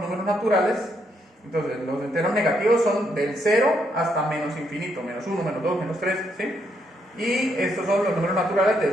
naturales, entonces los enteros negativos son del 0 hasta menos infinito, menos 1, menos 2, menos 3, ¿sí? Y estos son los números naturales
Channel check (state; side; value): normal; both; correlation 0.76